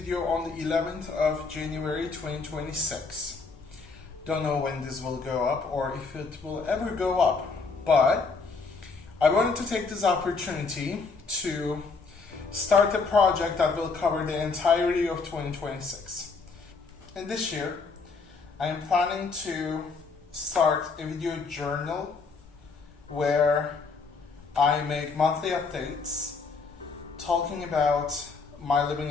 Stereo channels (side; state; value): right; quieter; 4.4 dB